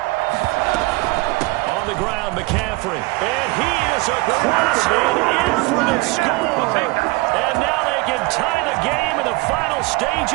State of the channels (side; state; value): left; quieter; 24.0 dB